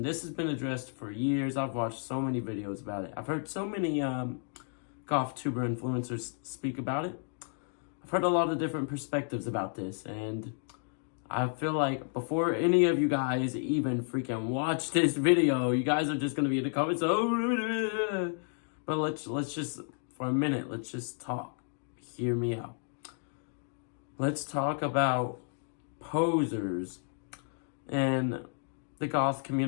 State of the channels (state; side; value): silent; right; 55 dB below the other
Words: this has been addressed for years. I've watched so many videos about it. I've heard so many Goth tuber influencers speak about it. I've heard a lot of different perspectives about this, and I feel like before any of you guys even freaking watch this video, you guys are just gonna be in the comments. Oh, but let's just for a minute. Let's just talk. Hear me out. Let's talk about posers and the Goth